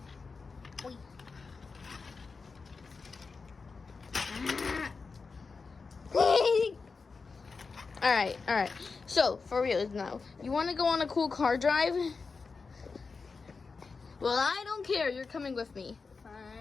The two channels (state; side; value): quieter; right; 4.6 dB